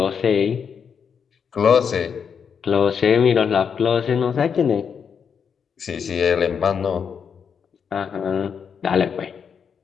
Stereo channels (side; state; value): right; quieter; 6.9 dB